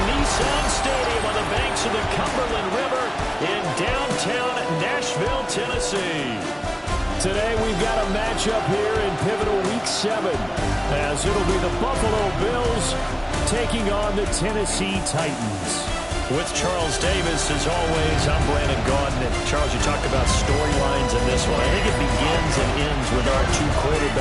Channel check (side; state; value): both; identical; correlation 1.00